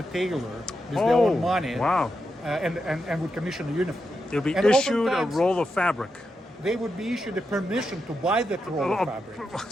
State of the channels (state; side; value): normal; both; correlation 0.86